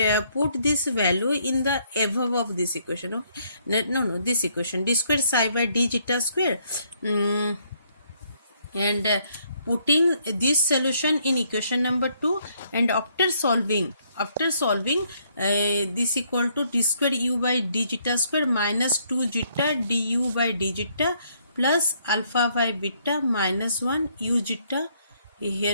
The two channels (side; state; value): both; inverted; correlation -0.69